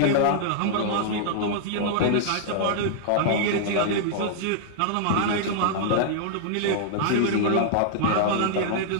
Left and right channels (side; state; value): both; different; correlation -0.01